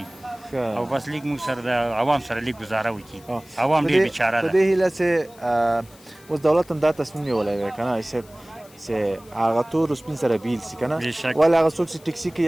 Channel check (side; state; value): left; noise; hiss, 25 dB below the sound